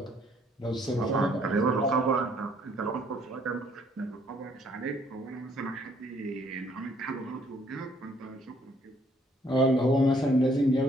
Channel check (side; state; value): both; normal; correlation 0.64